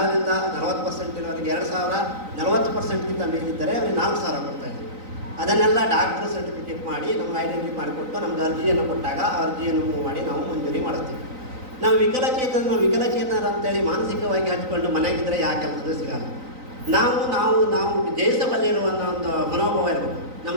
40% ಇರೋರಿಗೆ 2000, 40%ಗಿಂತ ಮೇಲಿದ್ದರೆ ಅವರಿಗೆ 4000 ಕೊಡ್ತಾ ಇದ್ದೀವಿ. ಅದನ್ನೆಲ್ಲ ಡಾಕ್ಟರ್ ಸರ್ಟಿಫಿಕೇಟ್ ಮಾಡಿ ನಮ್ಗೆ ಐಡೆಂಟಿಫೈ ಮಾಡಿಕೊಟ್ಟು ನಮ್ಗೆ ಅರ್ಜಿಯನ್ನು ಕೊಟ್ಟಾಗ ಆ ಅರ್ಜಿಯನ್ನು ಮೂವ್ ಮಾಡಿ ನಾವು ಮಂಜೂರಿ ಮಾಡಿಸ್ತೀವಿ. ನಾವು ವಿಕಲಚೇತನರು ಅಂತೇಳಿ ಮಾನಸಿಕವಾಗಿ ಹಚ್ಕೊಂಡು ಮನೆಗಿದ್ದರೆ ಯಾಕೆ ಕೆಲಸದ ಸಿಗಲ್ಲ. ನಾವು ದೇಶದಲ್ಲಿರುವ ಒಂದು ಮನೋಭಾವ ಇರಬೇಕು.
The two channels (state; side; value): late; left; 3.9 ms